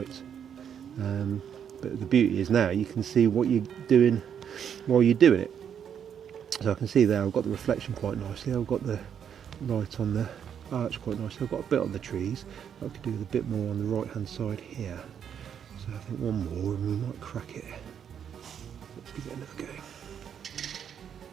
But the beauty is now you can see what you're doing while you're doing it. So I can see there I've got the reflection quite nicely, I've got the light on the arch quite nicely, I've got a bit on the trees. I could do with a bit more on the right hand side here. So I think one more and we might crack it. Let's give it another go.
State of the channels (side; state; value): left; quieter; 8.3 dB